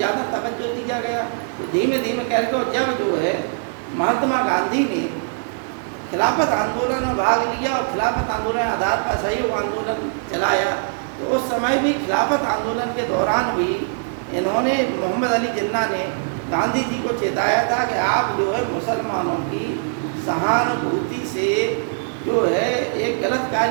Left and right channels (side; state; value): left; silent; digital silence